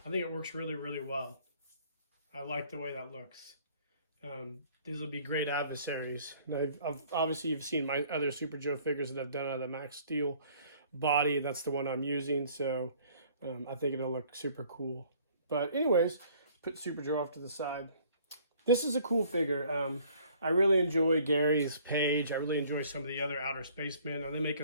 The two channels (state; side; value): inverted; both; correlation -0.57